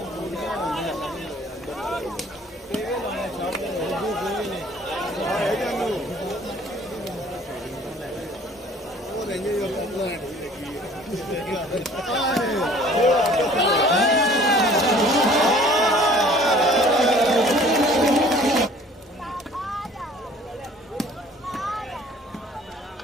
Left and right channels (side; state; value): both; normal; correlation 0.52